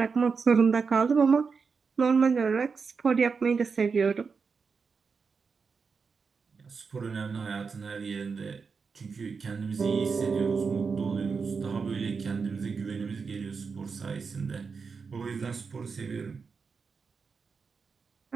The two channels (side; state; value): left; quieter; 5.3 dB